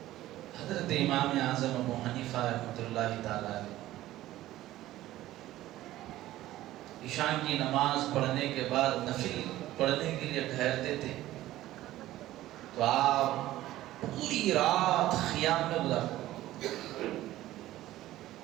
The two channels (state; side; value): quieter; left; 15.1 dB